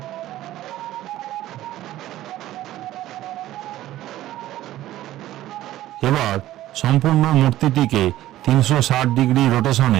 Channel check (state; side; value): quieter; left; 14.5 dB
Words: এবার সম্পূর্ণ মূর্তিটিকে 360 ডিগ্রি